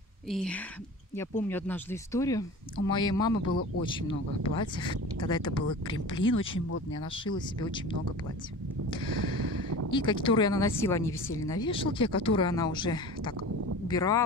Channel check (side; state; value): both; normal; correlation 0.36